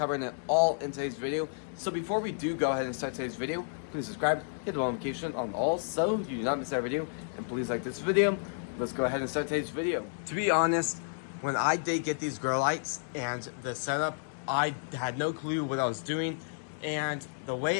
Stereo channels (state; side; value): silent; right; digital silence